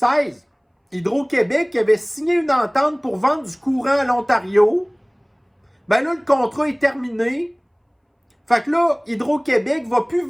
Hydro-Québec qui avait signé une entente pour vendre du courant à l'Ontario. Ben là, le contrat est terminé. Fait que là, Hydro-Québec va plus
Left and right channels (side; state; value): both; identical; correlation 1.00